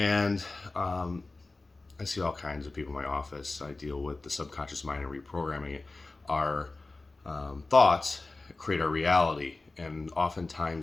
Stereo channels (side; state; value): right; quieter; 3.4 dB